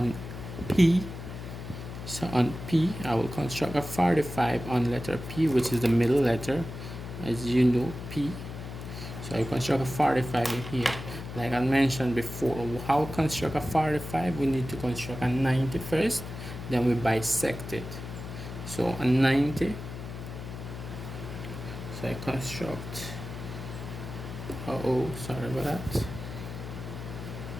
P. So on P, I will construct a 45 on letter P, which is the middle letter, as you know, P. So I construct a 45 in here. Like I mentioned before, how to construct a 45? We need to construct a 90 first, then we bisect it. So a 90. So I construct, sorry about that.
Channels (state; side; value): noise; left; hum, 9 dB below the sound